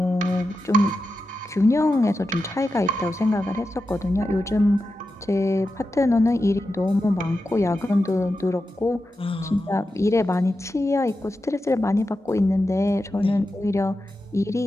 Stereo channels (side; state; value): both; normal; correlation 0.90